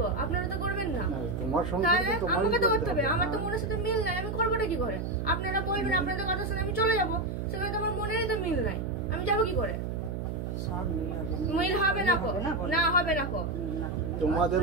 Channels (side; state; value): right; noise; hum, 4 dB below the sound